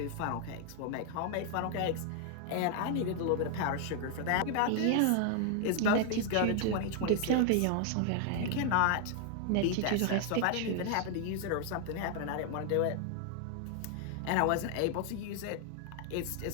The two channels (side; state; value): both; different; correlation 0.00